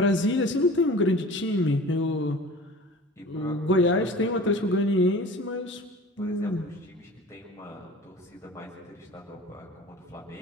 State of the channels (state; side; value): normal; both; correlation 0.41